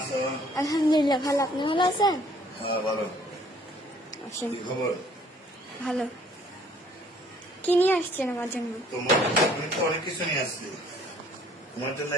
আলহামদুলিল্লাহ ভালো, আপনি ভালো আছেন? হ্যাঁ ভালো। আসেন। কি খবর? ভালো। কি নিয়ে আসছেন আমার জন্য? তোমার আমি তো অনেক কিছু নিয়ে আসছি তোমার জন্য।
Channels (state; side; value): normal; both; correlation 0.59